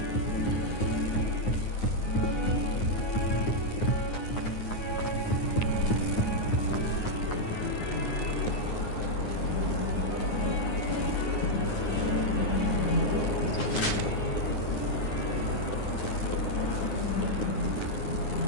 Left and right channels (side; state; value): right; late; 9.6 ms